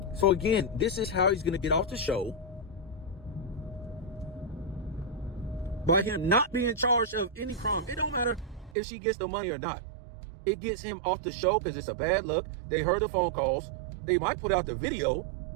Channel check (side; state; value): left; drops out; at 8.8 s